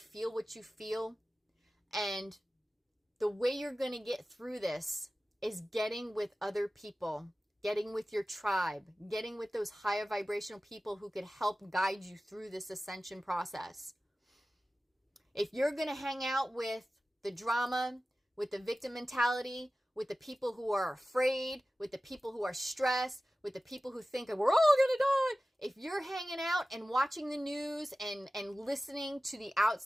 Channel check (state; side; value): normal; both; correlation 0.96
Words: what you feel. And the way you're going to get through this is getting with other people, getting with your tribe, getting with those higher vibrational people who could help guide you through this ascension process. If you're going to hang out with the drama, with the victim mentality, with the people who are afraid, with the people who are stressed, with the people who think that we're all going to die, if you're hanging out and watching the news and listening to the